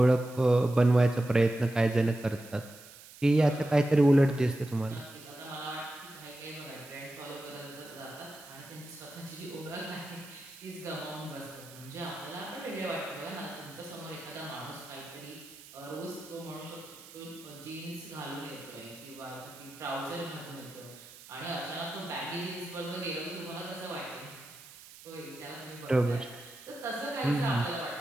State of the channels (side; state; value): right; noise; hiss, 18 dB below the sound